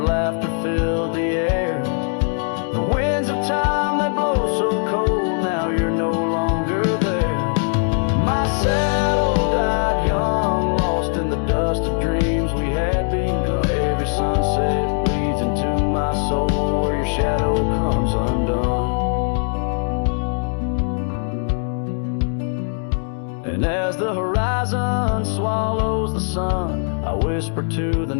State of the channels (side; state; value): right; silent; 59 dB below the other